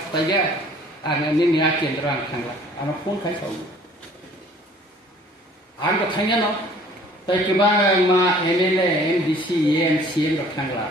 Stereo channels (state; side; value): normal; both; correlation 0.54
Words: बायगा आं निया केन्द्र आं थांला आं फन खाय साव आं तो थांया न ताय गोबां मा एमएलए एमडीसी एमसीएम रो थांला